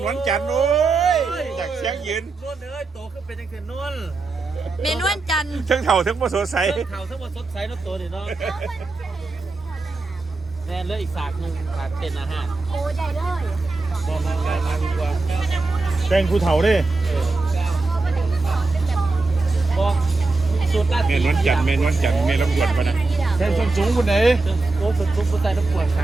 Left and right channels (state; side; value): quieter; left; 3.5 dB